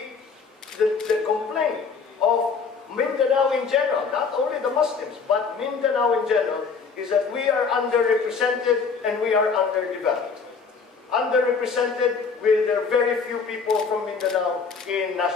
complaint of Mindanao in general, not only the Muslims, but Mindanao in general, is that we are underrepresented and we are underdeveloped. Underrepresented with there are very few people from Mindanao in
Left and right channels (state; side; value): quieter; right; 5.3 dB